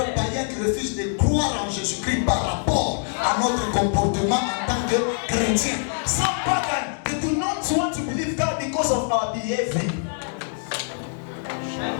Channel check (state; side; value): silent; right; 63 dB below the other